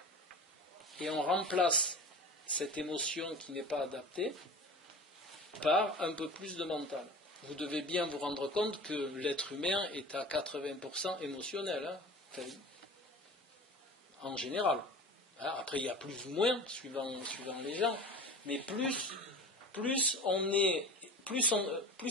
et on remplace cette émotion qui n'est pas adaptée par un peu plus de mental. vous devez bien vous rendre compte que l'être humain est à 80% émotionnel, hein, en général. Après, il y a plus ou moins, suivant les gens, mais plus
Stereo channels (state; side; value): normal; both; correlation 0.36